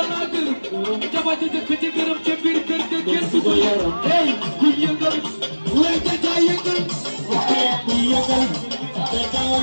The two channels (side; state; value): both; inverted; correlation -1.00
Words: la gërëm jaba ji dëkk ci gërëm ci biir kër ga kenn du ko yaram hey ku yëngal way jaja yëngal ku yëngal jaja